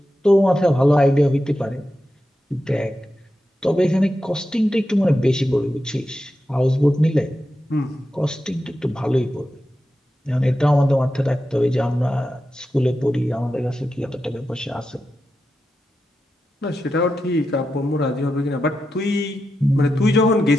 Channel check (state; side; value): normal; both; correlation 0.89